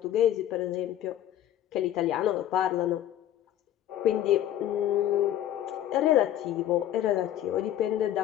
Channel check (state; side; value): quieter; right; 11.8 dB